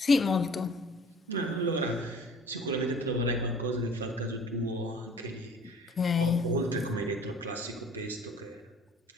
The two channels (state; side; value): normal; both; correlation 0.49